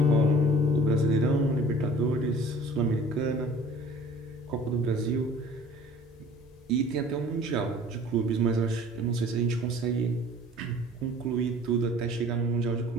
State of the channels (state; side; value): normal; both; correlation 0.48